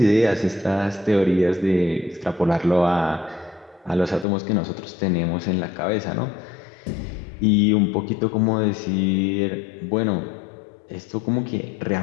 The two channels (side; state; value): right; drops out; at 4.2 s